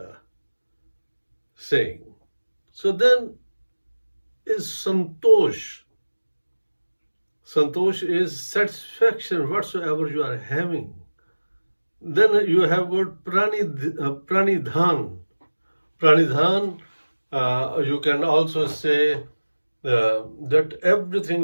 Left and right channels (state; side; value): inverted; both; correlation -1.00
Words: saying. So then is santosh. Santosh is satisfaction whatsoever you are having. Then you have got pranidhan. Pranidhan, you can also say that